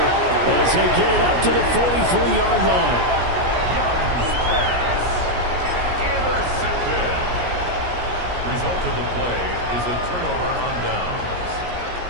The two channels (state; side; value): late; left; 17 ms